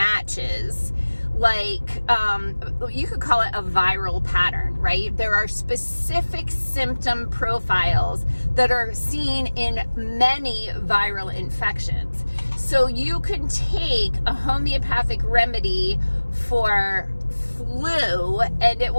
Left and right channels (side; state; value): both; inverted; correlation -1.00